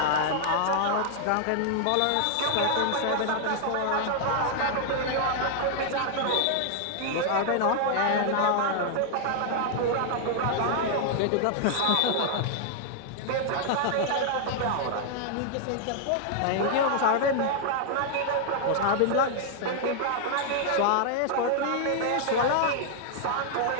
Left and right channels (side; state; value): both; different; correlation -0.01